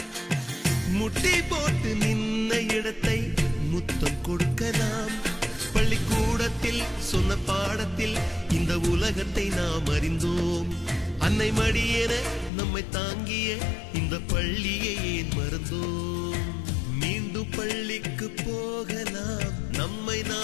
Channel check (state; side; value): drops out; right; at 12.5 s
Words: முட்டி போட்டு நின்ன இடத்தை முத்தம் கொடுக்கலாம். பள்ளிக்கூடத்தில் சொன்ன பாடத்தில் இந்த உலகத்தை நாம் அறிந்தோம். அன்னை மடியென நம்மை தாங்கிய இந்த பள்ளியை ஏன் மறந்தோம்? மீண்டும் பள்ளிக்கு போகலாம், நம்மை